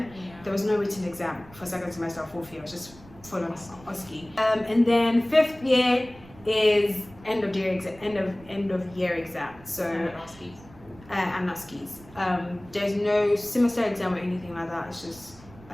There was no written exam for second semester or fourth year. It was just full on OSCE. And then fifth year is end of year exam. So and OSCEs. There's no semester exam or anything like that. It's just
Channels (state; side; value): noise; right; rumble, 22 dB below the sound